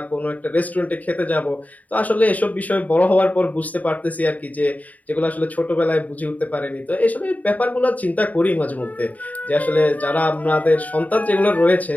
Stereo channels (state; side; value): late; right; 0.073 ms